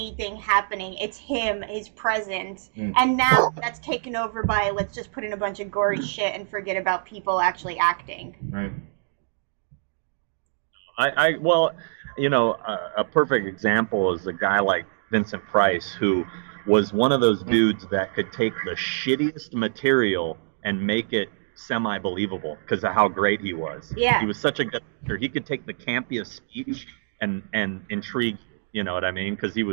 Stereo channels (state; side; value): silent; left; digital silence